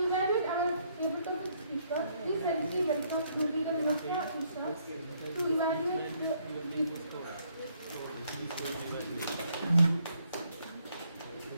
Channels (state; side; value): inverted; both; correlation -0.69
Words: evaluate our table topic speaker, please help me welcome youth leader Nafia Isha to evaluate the